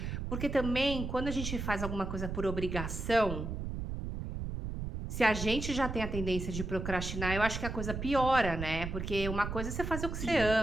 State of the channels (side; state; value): right; noise; rumble, 5 dB below the sound